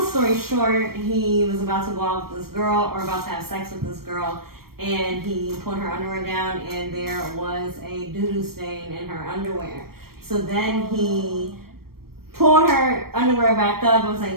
story short, he was about to go out with this girl or about to have sex with this girl, and he put her underwear down and there was a doo-doo stain in her underwear. So then he pulled her underwear back up and was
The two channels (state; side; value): late; left; 0.94 ms